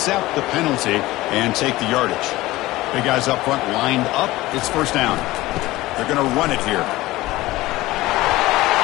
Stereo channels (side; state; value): right; quieter; 18.1 dB